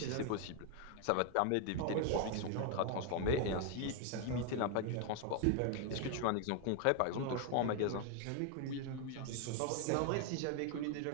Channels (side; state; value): both; different; correlation 0.01